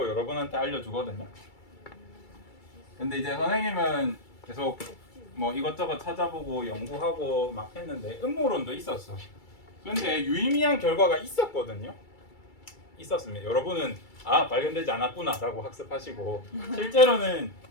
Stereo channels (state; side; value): late; right; 2.3 ms